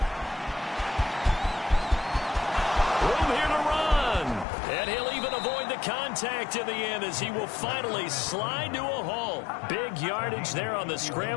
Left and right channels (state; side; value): drops out; right; at 4.5 s